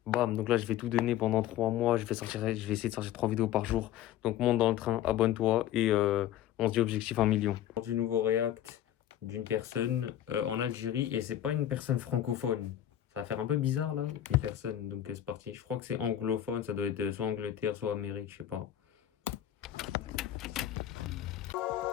Bam, donc là, je vais tout donner pendant 3 mois, je vais essayer de sortir 3 vidéos par jour. Donc monte dans le train, abonne-toi et on se dit objectif 1 million. Du nouveau react d'une personne en Algérie et c'est pas une personne francophone. Ça va faire un peu bizarre là, une personne, donc c'est parti. Je crois que c'est anglophone, ça doit être soit Angleterre, soit Amérique, je sais pas.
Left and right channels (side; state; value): right; quieter; 11.7 dB